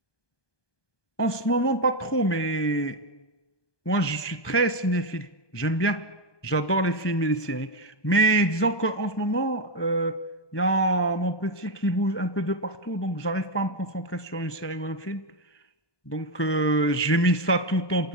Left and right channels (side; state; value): right; late; 1.2 ms